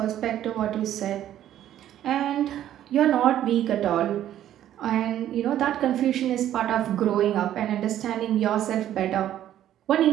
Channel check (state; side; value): quieter; left; 11.8 dB